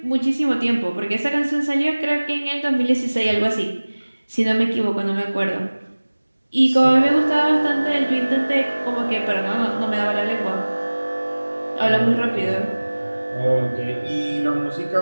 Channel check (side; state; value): both; inverted; correlation -1.00